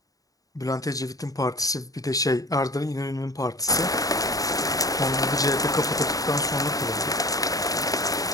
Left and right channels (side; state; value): right; late; 0.17 ms